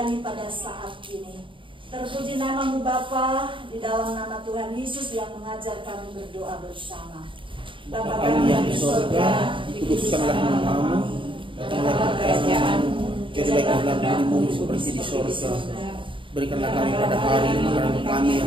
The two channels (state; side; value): late; left; 0.25 ms